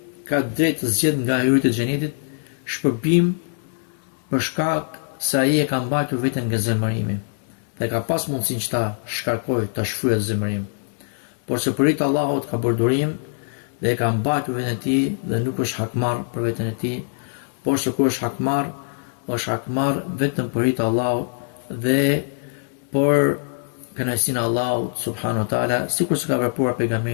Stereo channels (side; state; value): right; silent; 64 dB below the other